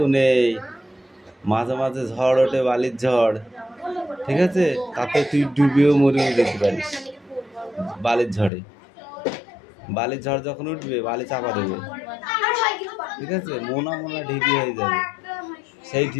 নেই। মাঝে মাঝে ঝড় ওঠে, বালির ঝড়, ঠিক আছে, তাতে তুই ডুবেও মরেও যেতে পারিস বালির ঝড়ে। বালির ঝড় যখন উঠবে বালি চাপা দেবে, ঠিক আছে, মোনা মোনা ঢিপি হয়ে যাবে। সেই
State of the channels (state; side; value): drops out; right; at 8.5 s